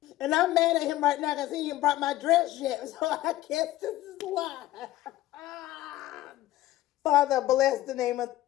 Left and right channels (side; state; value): right; quieter; 15.2 dB